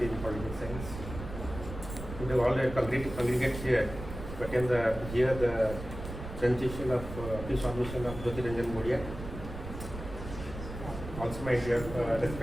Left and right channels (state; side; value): noise; right; rumble, 10 dB below the sound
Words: in political science. We all congregate here to attend the presentation of pre-submission of Jyotiranjan Gudia. Also my dear